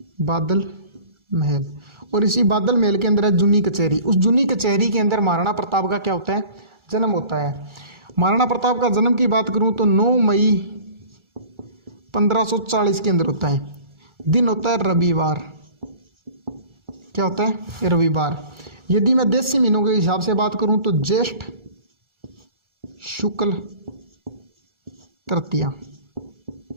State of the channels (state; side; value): late; left; 1.4 ms